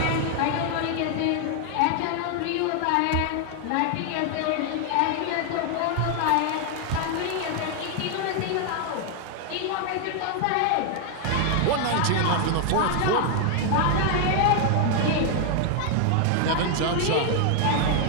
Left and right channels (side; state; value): both; different; correlation 0.00